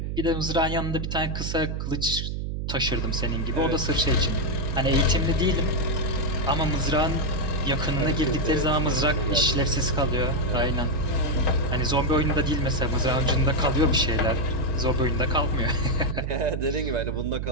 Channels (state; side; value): noise; right; hum, 3 dB below the sound